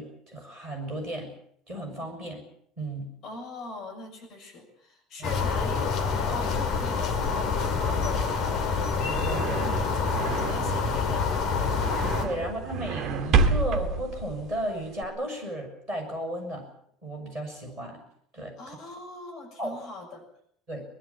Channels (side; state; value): both; normal; correlation 0.33